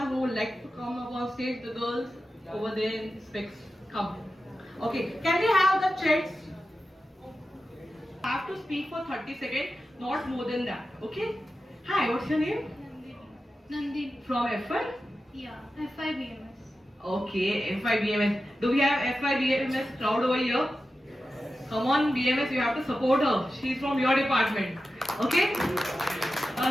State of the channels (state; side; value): normal; both; correlation 0.92